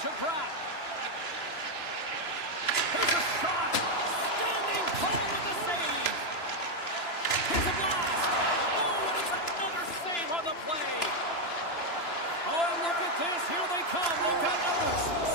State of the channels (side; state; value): right; late; 2.9 ms